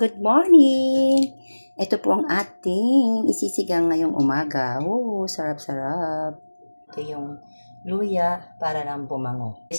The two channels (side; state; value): both; inverted; correlation -1.00